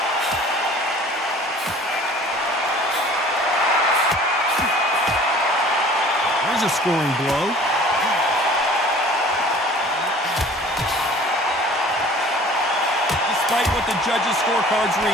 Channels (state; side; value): normal; both; correlation 0.48